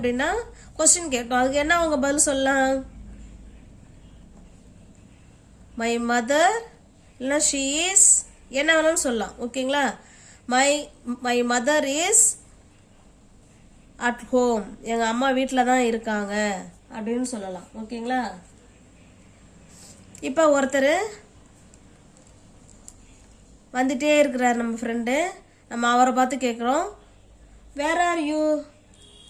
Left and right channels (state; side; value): identical; both; correlation 1.00